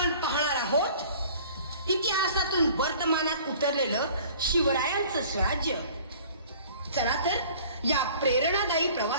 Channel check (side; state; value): both; inverted; correlation -0.49